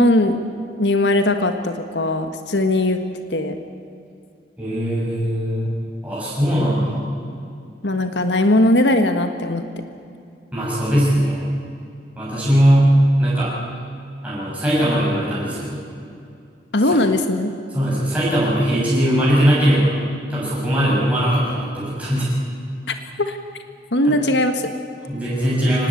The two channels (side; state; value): both; normal; correlation 0.66